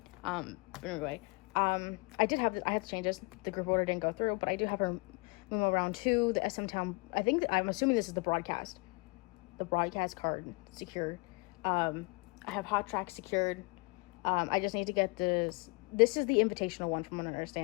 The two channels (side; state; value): right; quieter; 29.5 dB